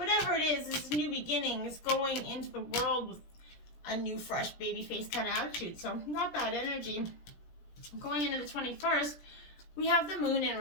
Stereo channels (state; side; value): late; right; 17 ms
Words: it is, it's new beginnings, going into the world with a new, fresh, baby face kind of attitude. So not bad energy. Going into the 21st, we have the Moon in